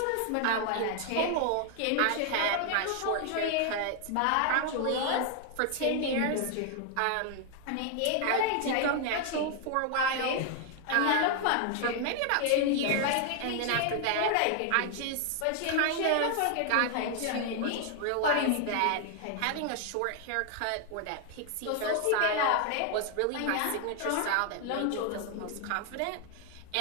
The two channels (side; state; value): both; different; correlation 0.00